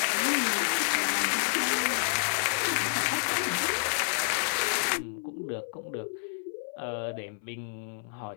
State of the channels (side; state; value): right; silent; 56 dB below the other